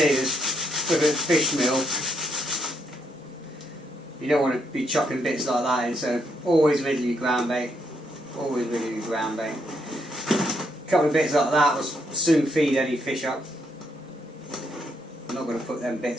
with a fish meal, you don't want to be chopping bits like that in, so always riddle your ground bait. Always riddle your ground bait. A couple of bits like that will soon feed any fish up. I'm not going to put them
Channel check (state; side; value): normal; both; correlation 0.76